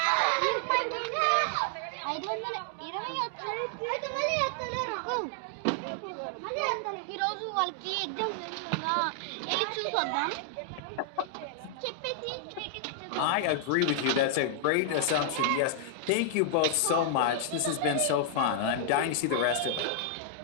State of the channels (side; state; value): both; different; correlation -0.01